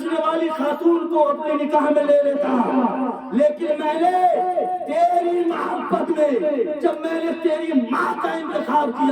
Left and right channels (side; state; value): both; identical; correlation 1.00